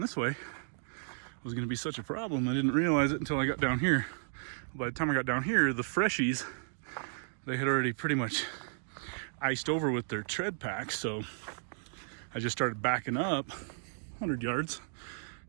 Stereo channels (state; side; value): silent; left; digital silence